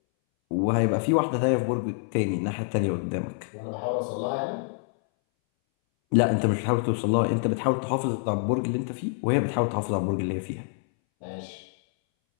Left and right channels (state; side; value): silent; right; 60 dB below the other